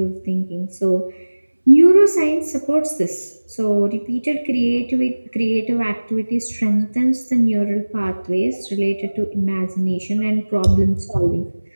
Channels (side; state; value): both; inverted; correlation -1.00